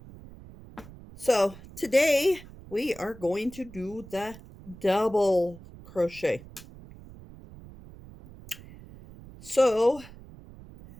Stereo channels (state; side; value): noise; right; rumble, 18 dB below the sound